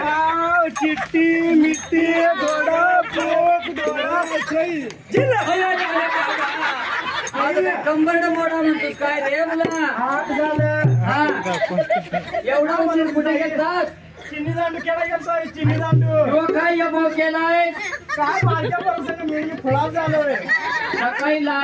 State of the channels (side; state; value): both; identical; correlation 1.00